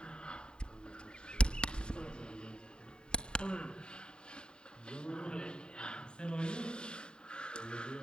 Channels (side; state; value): right; late; 0.049 ms